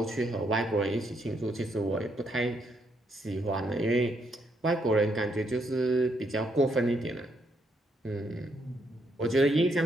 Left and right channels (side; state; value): both; normal; correlation 0.75